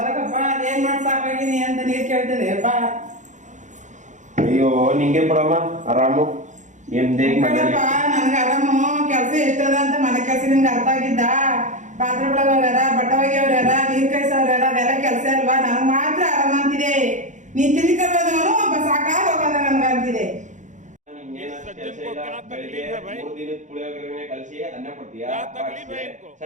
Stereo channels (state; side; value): late; left; 0.35 ms